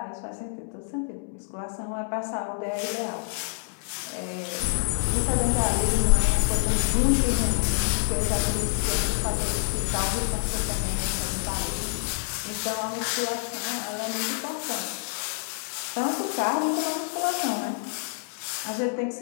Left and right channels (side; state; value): right; silent; 60 dB below the other